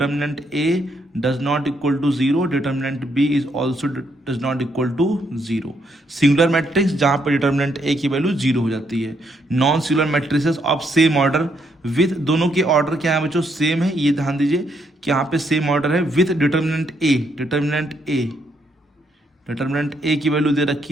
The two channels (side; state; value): both; normal; correlation 0.74